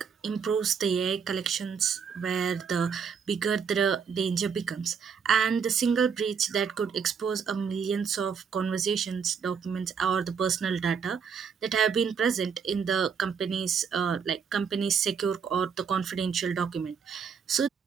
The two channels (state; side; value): quieter; left; 6.5 dB